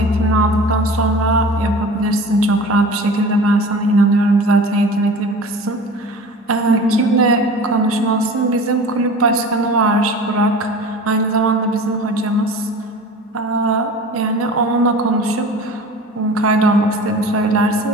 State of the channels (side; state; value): both; normal; correlation 0.38